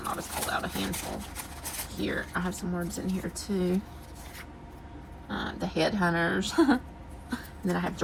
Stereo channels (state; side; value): identical; both; correlation 1.00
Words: I'll just pull out a handful here. I have some words in here too. The headhunters. And then I have